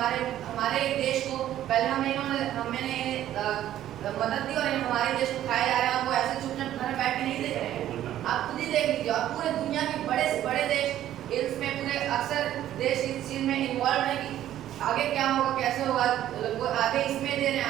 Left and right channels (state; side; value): quieter; left; 12.3 dB